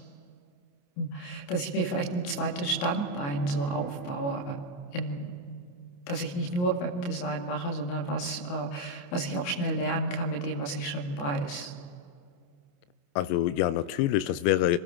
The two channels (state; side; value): late; right; 28 ms